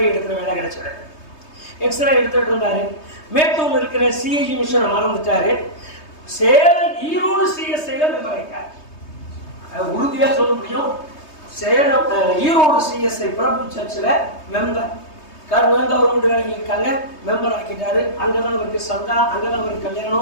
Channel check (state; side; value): late; right; 3.2 ms